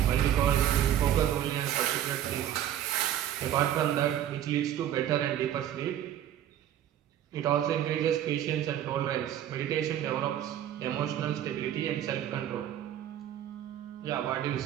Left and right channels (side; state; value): left; quieter; 11.1 dB